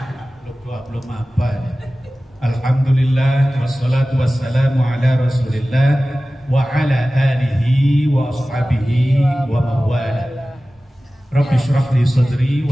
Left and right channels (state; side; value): normal; both; correlation 0.96